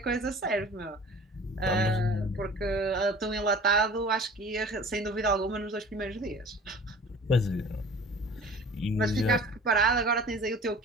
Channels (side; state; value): both; normal; correlation 0.44